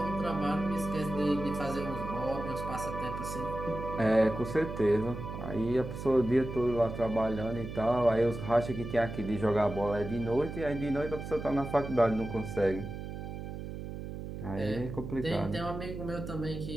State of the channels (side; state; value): right; noise; hum, 8 dB below the sound